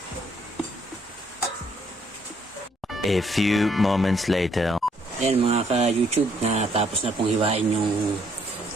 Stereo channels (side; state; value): both; normal; correlation 0.69